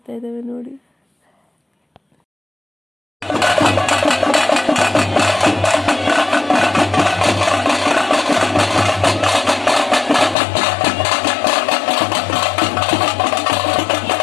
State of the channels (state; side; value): drops out; right; at 10.4 s